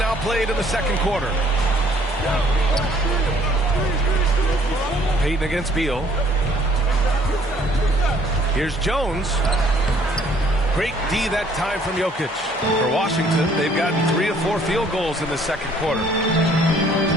played in the second quarter. Payton against Beal. Here's Jones. Great D that time from Jokic. For Washington, they've gotten 3 of 4 field goals in the second quarter.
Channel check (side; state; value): both; normal; correlation 0.61